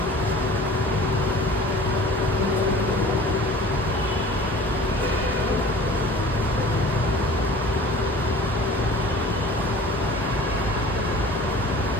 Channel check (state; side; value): normal; both; correlation 0.44